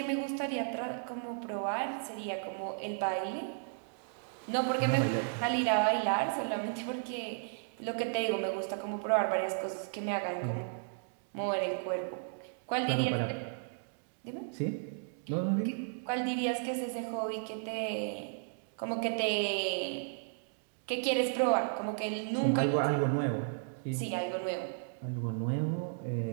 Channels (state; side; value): silent; left; digital silence